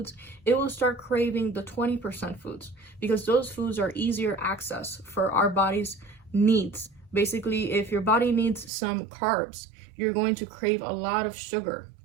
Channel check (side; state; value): left; drops out; at 8.7 s